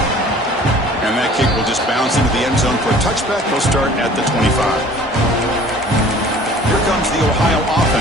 And that kick will just bounce into the end zone for a touchback. They'll start at the 25. Here comes the Ohio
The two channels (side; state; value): both; normal; correlation 0.49